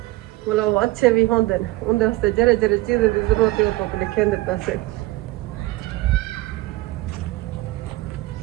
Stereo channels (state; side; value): quieter; left; 18.8 dB